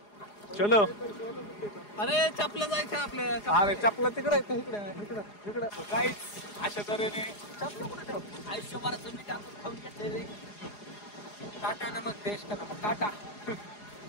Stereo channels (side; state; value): right; late; 4.8 ms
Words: चलो. अरे चपला जायचं आपल्या. अरे चपला तिकडे इकडे काहीच अशा तऱ्हेने चपला कुठे ठेव. आयुष्यभराचं मी टाकून खाऊन घेतले. टाटा नमक देश का नमक.